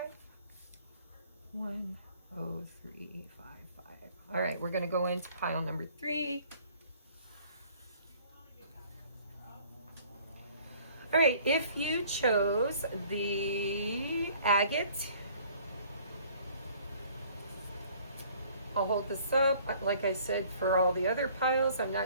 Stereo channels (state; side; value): inverted; both; correlation -0.56